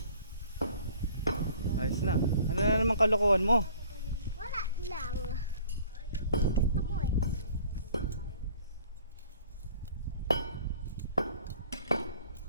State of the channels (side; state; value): both; inverted; correlation -0.53